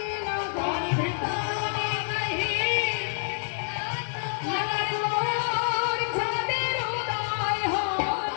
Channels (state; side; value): silent; right; digital silence